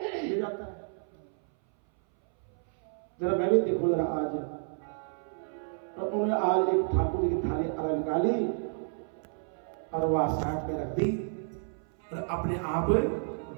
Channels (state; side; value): silent; left; 57 dB below the other